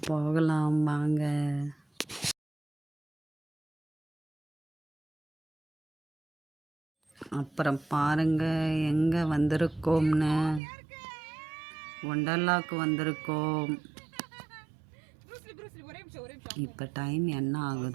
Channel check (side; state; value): left; drops out; at 10.6 s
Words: போகலாம் வாங்க. அப்புறம் பாருங்க எங்கே வந்திருக்கோம்னு. ஒண்டர்லாவுக்கு வந்திருக்கோம். இப்போ டைம் என்ன